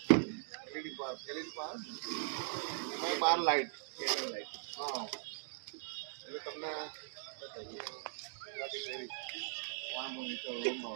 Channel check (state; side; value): silent; left; digital silence